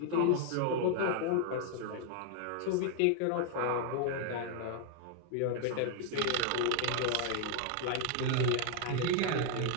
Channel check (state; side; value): different; both; correlation 0.00